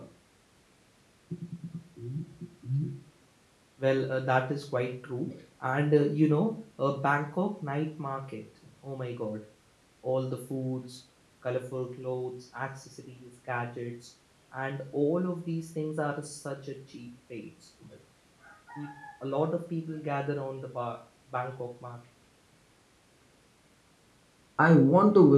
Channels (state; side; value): identical; both; correlation 1.00